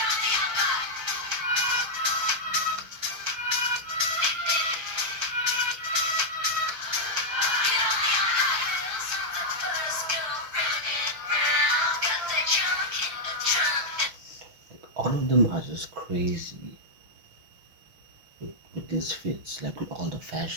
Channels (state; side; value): late; left; 6.3 ms